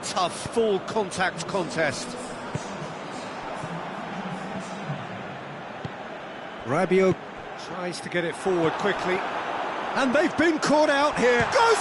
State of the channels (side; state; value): both; identical; correlation 1.00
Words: tough, full contact contest. Rabiot tries to get it forward quickly. And they've been caught out here. Goes